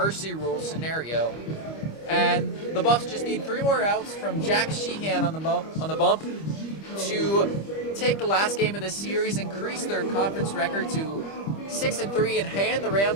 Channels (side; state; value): right; late; 25 ms